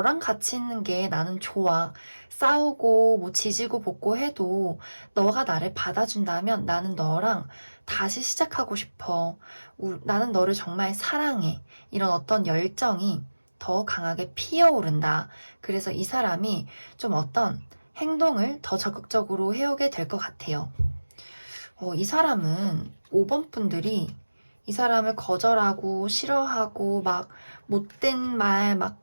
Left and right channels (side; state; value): both; inverted; correlation -1.00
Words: 같이 있는 게 나는 좋아. 싸우고 뭐 지지고 볶고 해도 너가 나를 받아준다면 나는 너랑 다시 시작하고 싶어. 나는 너를 정말 사랑해. 이런 어떤 열정이 더 강하게 피어오른다. 그래서 이 사람이 좀 어떤 행동을 더 적극적으로 해오게 될 것 같아요. 이 사람은 5번 분들이 이 사람을 거절하고 싫어하고 막 못된 말, 막